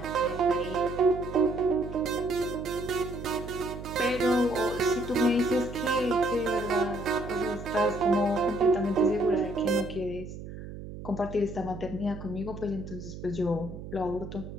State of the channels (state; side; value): noise; right; hum, 11 dB below the sound